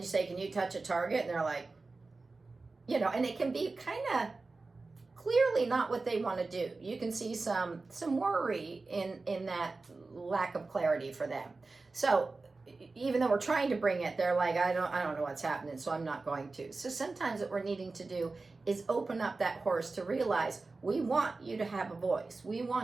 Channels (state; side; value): quieter; left; 3.7 dB